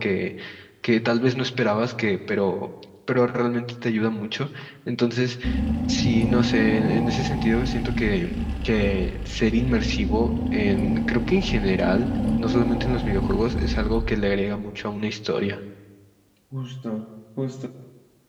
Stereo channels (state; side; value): identical; both; correlation 1.00